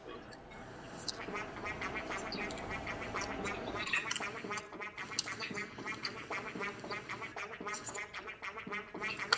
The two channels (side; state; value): both; identical; correlation 1.00